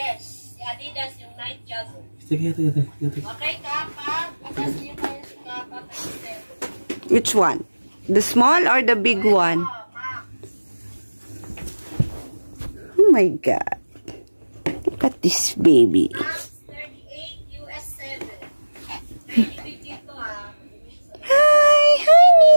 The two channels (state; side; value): inverted; both; correlation -1.00